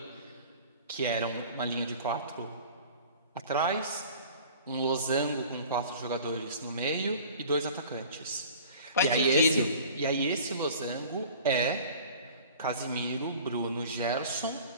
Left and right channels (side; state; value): both; inverted; correlation -0.45